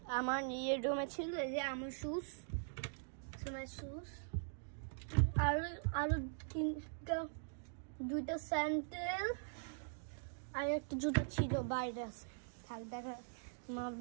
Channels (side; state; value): left; silent; digital silence